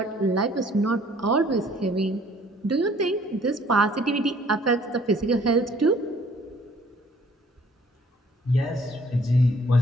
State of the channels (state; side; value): normal; both; correlation 0.58